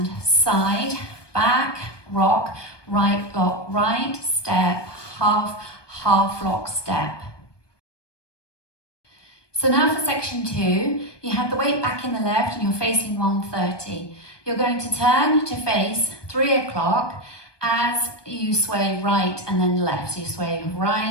side, back, rock, right lock, right, step, half, half lock step. So now for section 2, you have the weight back in the left and you're facing 130. You're going to turn to face 3 o'clock as you sway right and then left. So you sway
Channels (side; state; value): right; late; 1.2 ms